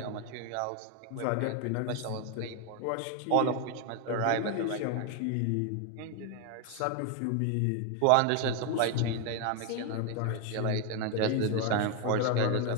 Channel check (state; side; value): different; both; correlation 0.01